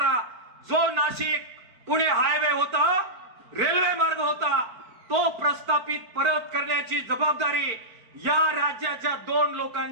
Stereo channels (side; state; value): left; late; 4.5 ms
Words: जो नाशिक पुणे हायवे होता, रेल्वे मार्ग होता, तो प्रस्थापित परत करण्याची जबाबदारी या राज्याच्या 2